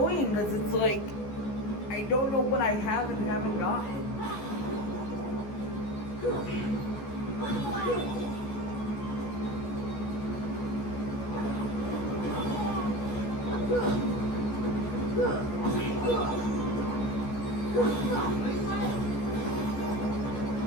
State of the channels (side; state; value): right; late; 14 ms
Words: because it's like, I don't know what I have and haven't gotten.